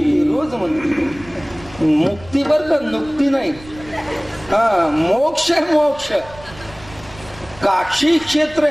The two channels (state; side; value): noise; right; rumble, 20 dB below the sound